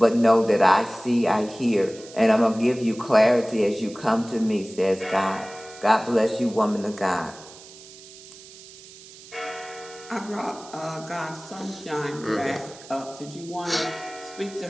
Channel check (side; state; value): right; noise; hiss, 19 dB below the sound